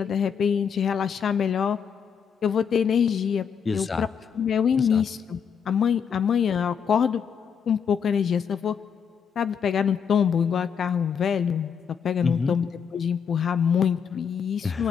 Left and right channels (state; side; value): quieter; right; 7.1 dB